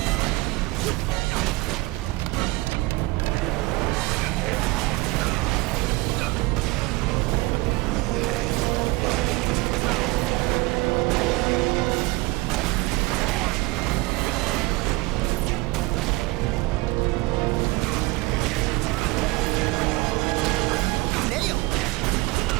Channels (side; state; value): left; quieter; 22.3 dB